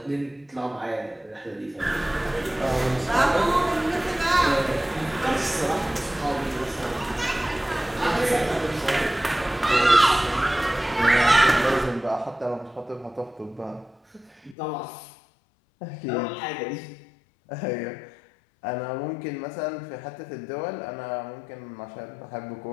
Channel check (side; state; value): right; drops out; at 14.6 s